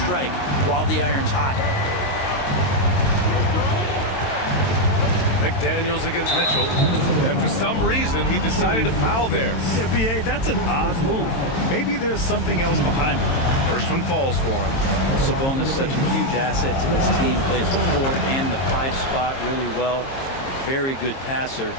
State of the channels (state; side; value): late; right; 22 ms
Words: while the iron's hot. McDaniels against Mitchell, and for some reason he decided to foul there. Yeah, BA, that's an odd move. Maybe there's something else behind it. First one falls for him. Well, Sabonis, such a huge asset to this team, plays the 4 and the 5 spot really well. A very good passer,